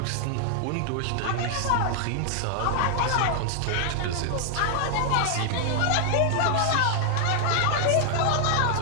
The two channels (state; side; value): different; both; correlation 0.00